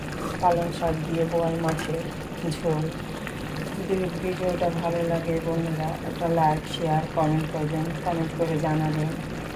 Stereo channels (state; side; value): identical; both; correlation 1.00